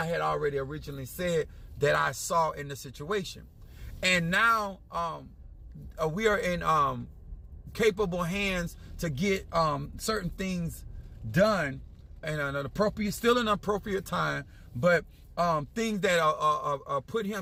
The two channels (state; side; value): identical; both; correlation 1.00